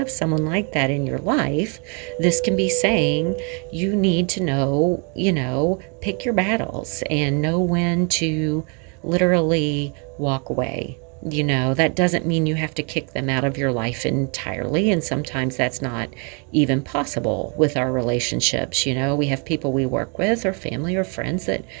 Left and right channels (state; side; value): quieter; left; 35.7 dB